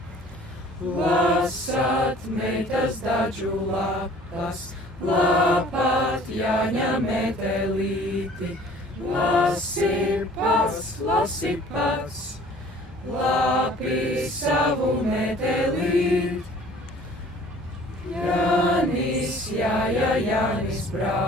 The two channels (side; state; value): both; normal; correlation 0.51